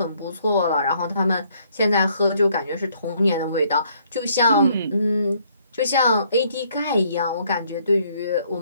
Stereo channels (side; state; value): both; inverted; correlation -0.66